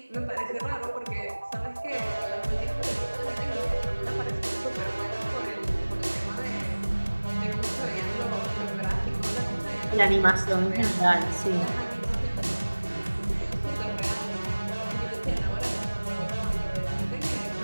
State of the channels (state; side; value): inverted; both; correlation -1.00